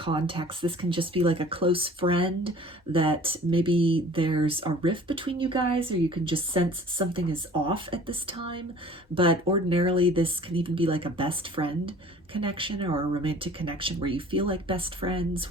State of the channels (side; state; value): both; normal; correlation 0.48